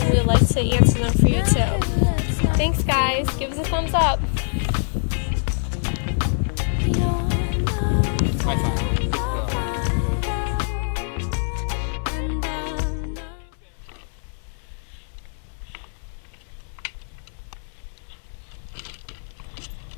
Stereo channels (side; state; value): right; silent; 63 dB below the other